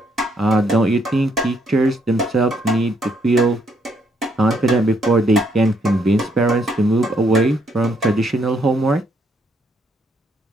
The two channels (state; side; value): normal; both; correlation 0.72